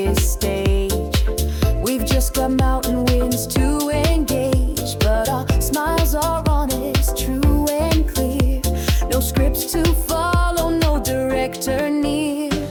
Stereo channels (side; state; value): both; identical; correlation 1.00